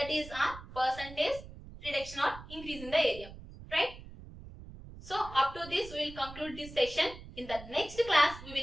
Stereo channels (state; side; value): noise; right; rumble, 15 dB below the sound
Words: is our percentage reduction or increase in the area. Right. So up to this we will conclude this session. In the next class we